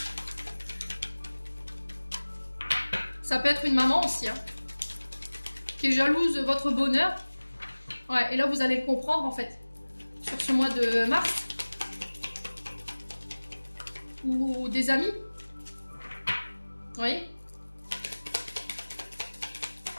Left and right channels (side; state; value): both; inverted; correlation -1.00